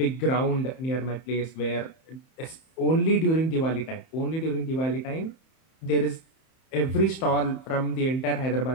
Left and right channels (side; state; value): right; late; 31 ms